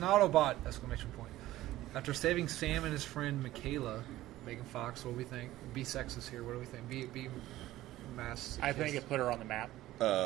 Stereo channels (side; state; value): left; quieter; 15.5 dB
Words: Autobot! Exclamation point. After saving Sam and his friend Michaela, Megan Fox, what do we think? Be sexist here, what do we think? Be mass. I think it put her on the map.